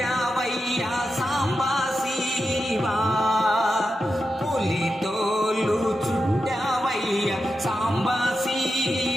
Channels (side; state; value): both; normal; correlation 0.89